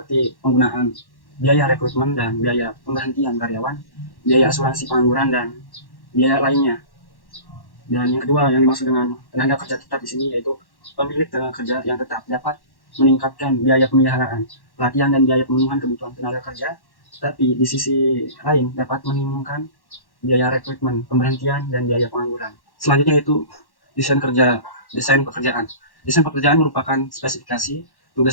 penggunaan biaya rekrutmen dan biaya pemberhentian karyawan, biaya asuransi pengangguran, dan biaya lainnya. Dan yang kedua yang dimaksud dengan tenaga kerja tetap di sini yaitu pemilik tenaga kerja yang tetap dapat meningkatkan biaya pemeliharaan, pelatihan, dan biaya pemenuhan kebutuhan tenaga kerja, tetapi di sisi lain dapat menimbulkan biaya rekrutmen, pemberhentian, dan biaya pengangguran. Selanjutnya yaitu desain pekerjaan. Desain pekerjaan merupakan spesifikasi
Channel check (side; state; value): right; late; 1.1 ms